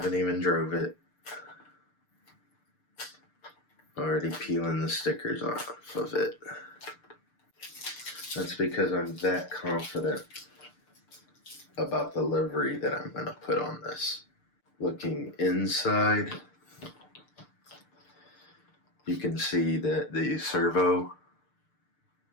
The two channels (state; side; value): late; right; 6.7 ms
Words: even drove it. Already peeling the stickers off of it. That's because I'm that confident about the livery that I'm going to put on this. Looking inside, you can see that the servo